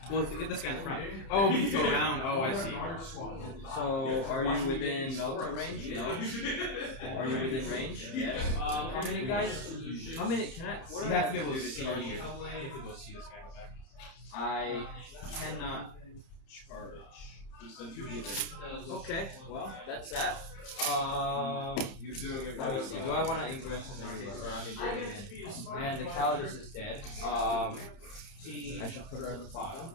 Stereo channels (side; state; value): right; late; 31 ms